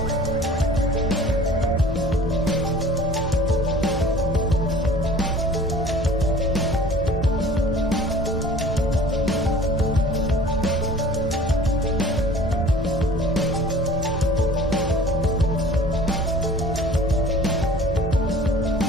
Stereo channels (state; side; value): normal; both; correlation 0.47